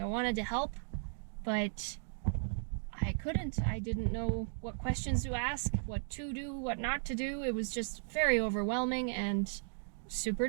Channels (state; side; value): silent; left; digital silence